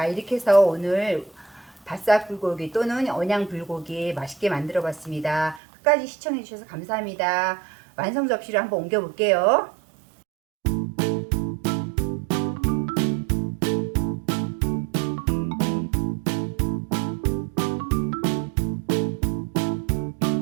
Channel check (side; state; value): left; drops out; at 5.6 s